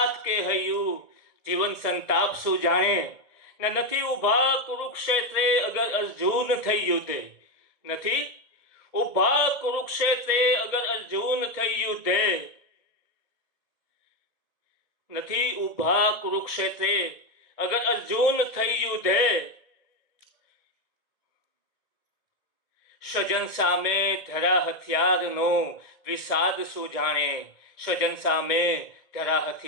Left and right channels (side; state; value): right; late; 1.9 ms